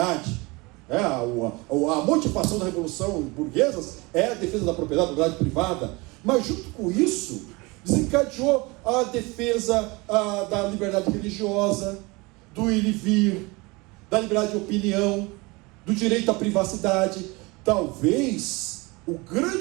A motivação da Revolução Burguesa é a defesa da propriedade privada, mas junto com isso desencadeou a defesa da liberdade religiosa, do ir e vir, da liberdade de opinião, do direito à privacidade. Talvez o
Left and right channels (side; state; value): left; quieter; 25.1 dB